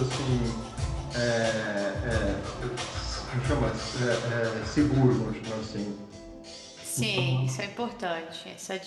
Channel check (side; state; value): both; identical; correlation 1.00